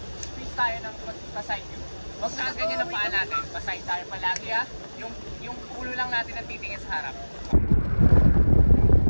Squeeze tayo ng paside view. Huwag na ganyan ang paa natin. Paside tayo palagi ha. Yung ulo lang natin ang titingin sa harap.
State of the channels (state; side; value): inverted; both; correlation -1.00